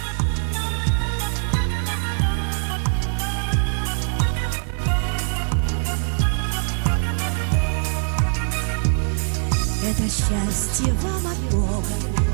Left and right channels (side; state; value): left; silent; digital silence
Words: Это счастье вам от Бога,